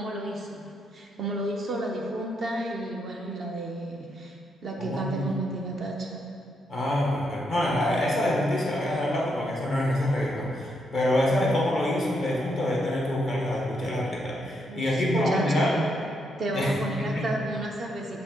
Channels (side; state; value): both; normal; correlation 0.78